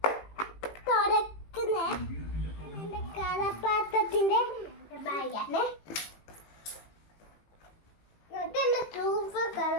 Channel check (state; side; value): late; right; 18 ms